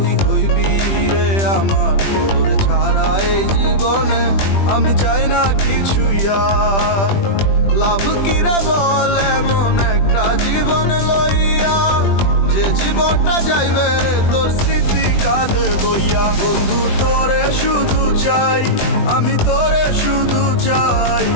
হইবি রে আমার, তোর ছাড়া এই জীবনে আমি চাই না কিছুই আর। লাভ কিরে বল এমন একটা জীবন লইয়া, যে জীবনটা যাইবে রে তোর স্মৃতি কাঁধে বইয়া। বন্ধু তোরে শুধু চাই, আমি তোরে শুধু চাই,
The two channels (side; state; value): right; late; 20 ms